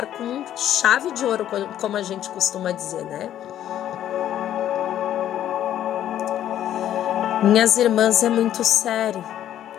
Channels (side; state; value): right; quieter; 11.4 dB